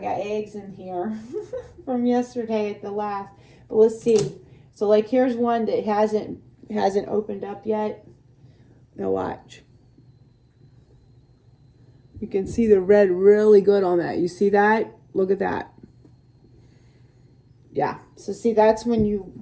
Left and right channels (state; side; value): identical; both; correlation 1.00